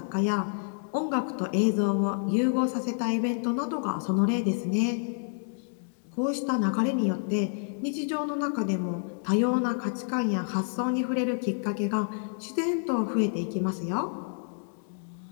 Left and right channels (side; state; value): right; silent; digital silence